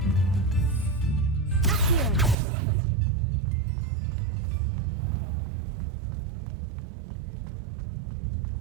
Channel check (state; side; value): drops out; left; at 2.4 s